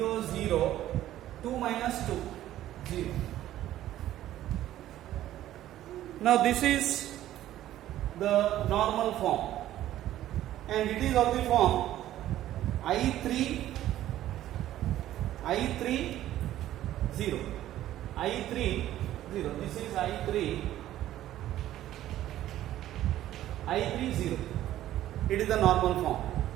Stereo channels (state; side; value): quieter; left; 13.3 dB